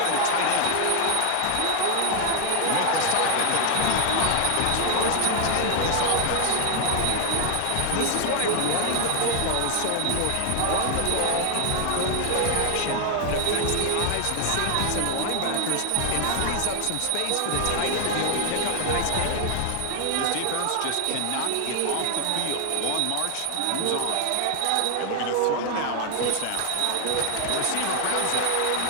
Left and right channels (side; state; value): both; different; correlation 0.00